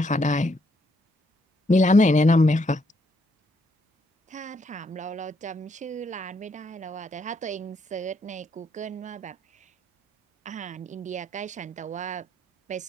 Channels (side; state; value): both; normal; correlation 0.73